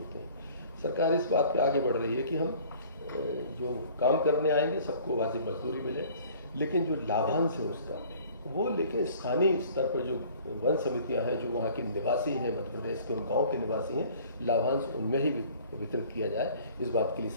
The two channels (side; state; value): both; inverted; correlation -0.51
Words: हैं। सरकार इस बात पे आगे बढ़ रही है कि हम जो काम करने आएंगे सबको वाजिब मजदूरी मिले, लेकिन जो लाभांश है उसका वो लेकिन स्थानीय स्तर पर जो वन समितियां हैं, जो वहाँ के निवासी हैं, मध्य प्रदेश के उन गाँव के निवासी हैं, लाभांश उनमें ही वितरित किया जाए। इस बात के लिए